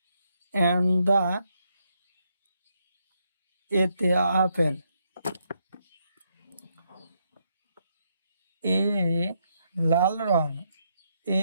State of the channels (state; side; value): inverted; both; correlation -0.77